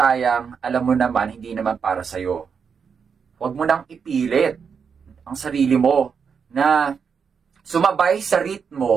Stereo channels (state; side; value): quieter; left; 6.3 dB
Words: alam mo naman hindi naman para sa'yo. Huwag mo nang ipilit ang sarili mo na sumabay sa